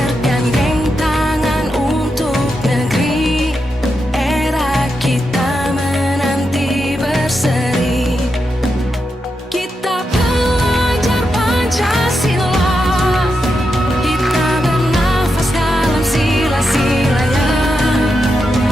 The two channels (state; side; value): normal; both; correlation 0.86